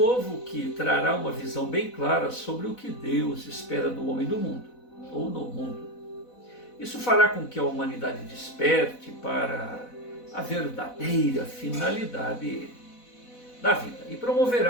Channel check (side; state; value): right; late; 4.1 ms